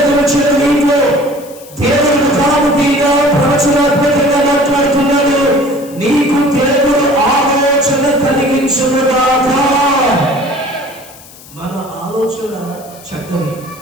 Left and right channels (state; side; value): noise; left; hiss, 21 dB below the sound